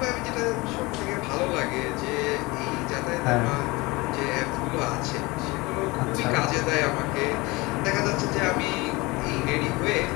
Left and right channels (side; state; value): right; quieter; 23.5 dB